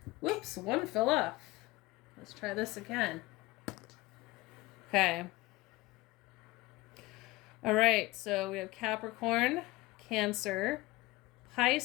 Whoops, one fell off. Let's try this again. Okay. All right, so we have Capricorn, Cancer,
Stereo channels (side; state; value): right; quieter; 19.9 dB